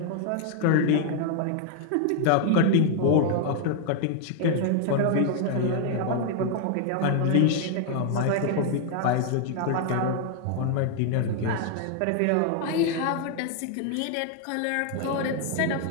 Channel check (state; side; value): different; both; correlation 0.00